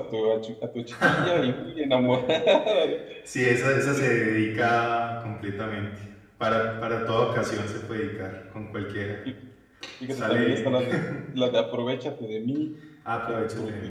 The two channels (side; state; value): both; identical; correlation 1.00